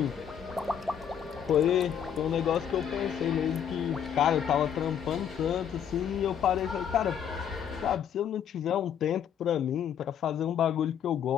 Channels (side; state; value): right; quieter; 8.7 dB